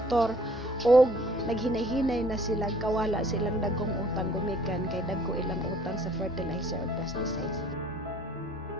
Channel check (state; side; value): normal; both; correlation 0.57